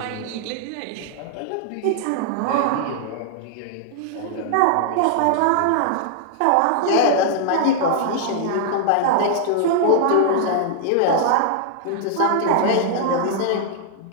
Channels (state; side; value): different; both; correlation -0.01